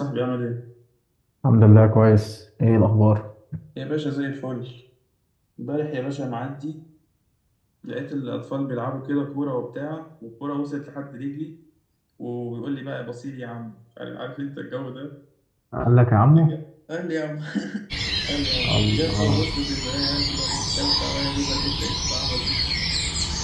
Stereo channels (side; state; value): both; identical; correlation 1.00